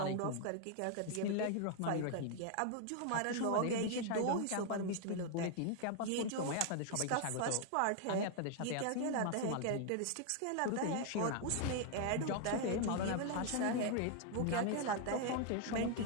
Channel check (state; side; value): different; both; correlation 0.00